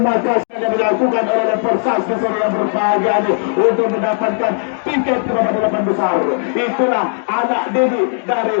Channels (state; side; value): silent; right; digital silence